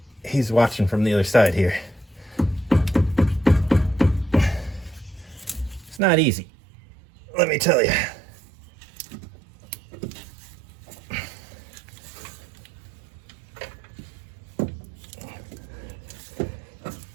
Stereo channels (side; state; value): left; drops out; at 6.0 s